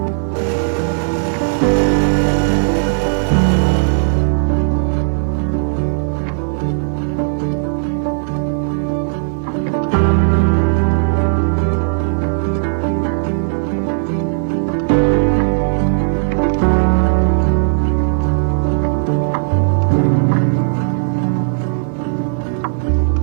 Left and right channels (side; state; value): left; silent; digital silence